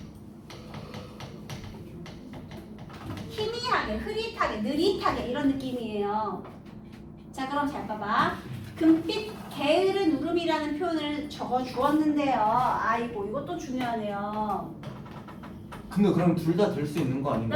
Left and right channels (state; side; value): identical; both; correlation 1.00